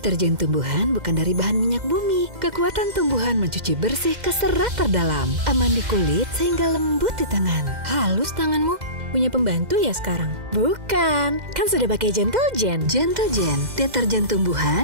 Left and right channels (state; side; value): late; left; 2.0 ms